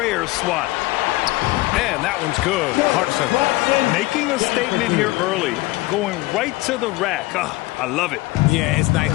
swat. And that one's good. Clarkson. Making a statement here early. Going right to the rack. I love it. Yeah, it's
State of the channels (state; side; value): quieter; right; 20.1 dB